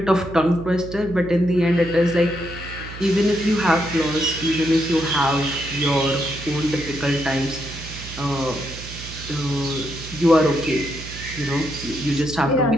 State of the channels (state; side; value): noise; right; hum, 13 dB below the sound